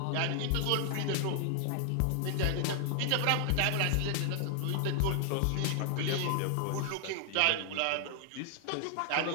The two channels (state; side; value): different; both; correlation 0.00